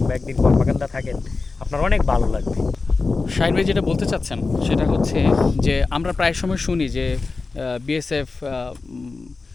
একদিন কর্মাকান্দা থাকেন, আপনার অনেক ভালো লাগবে। শাহিন ভাই যেটা বলতে চাচ্ছেন সেটা হচ্ছে যে আমরা প্রায় সময় শুনি যে বিএসএফ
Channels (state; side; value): quieter; right; 4.0 dB